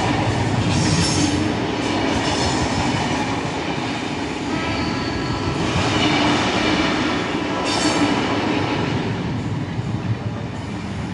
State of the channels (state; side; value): identical; both; correlation 1.00